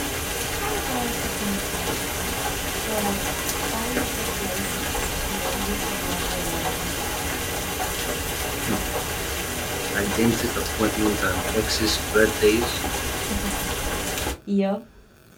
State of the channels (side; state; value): both; identical; correlation 1.00